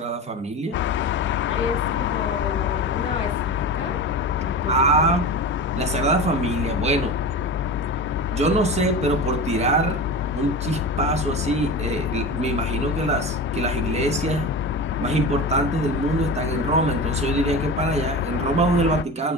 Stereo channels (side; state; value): both; normal; correlation 0.28